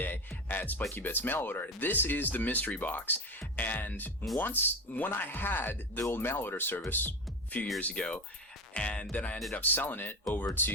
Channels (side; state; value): both; normal; correlation 0.22